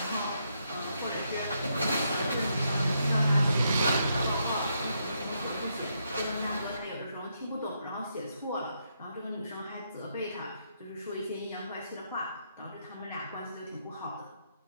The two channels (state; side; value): inverted; both; correlation -0.78